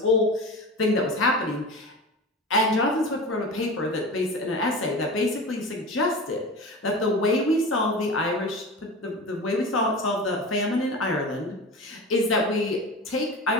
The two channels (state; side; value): normal; both; correlation 0.31